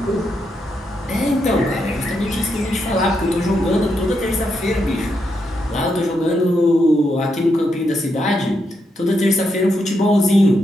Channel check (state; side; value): normal; both; correlation 0.82